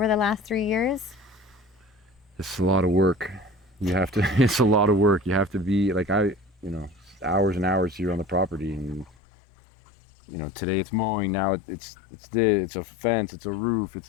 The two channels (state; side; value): drops out; right; at 9.1 s